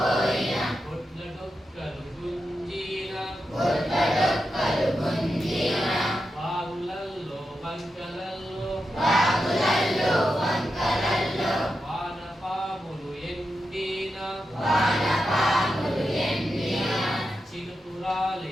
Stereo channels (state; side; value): normal; both; correlation 0.88